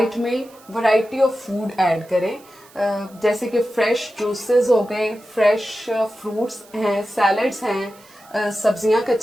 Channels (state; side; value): noise; right; hiss, 26 dB below the sound